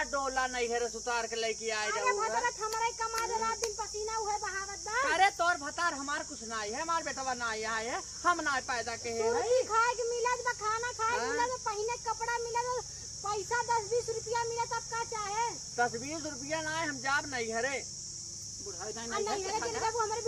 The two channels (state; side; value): identical; both; correlation 1.00